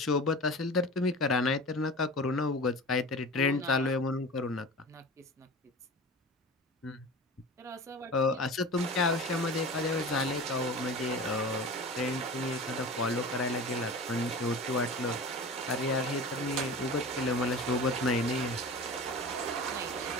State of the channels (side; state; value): both; normal; correlation 0.35